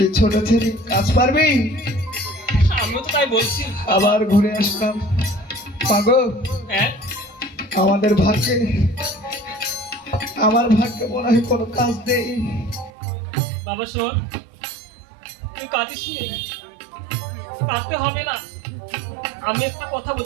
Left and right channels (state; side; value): drops out; left; at 12.9 s